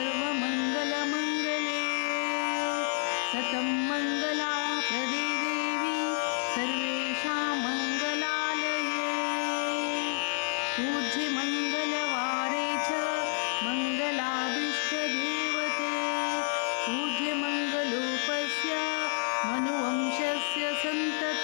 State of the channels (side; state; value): right; silent; 58 dB below the other